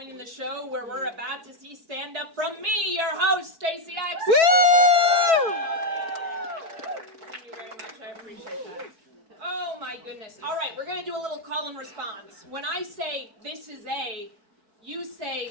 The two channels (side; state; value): left; late; 4.6 ms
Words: in the show where we're about to see stand-up from me, your host, Stacey X. Woo! Thank you very much. I appreciate that. Oh my goodness. All right, we're going to do a little call and response. When I say this is a, you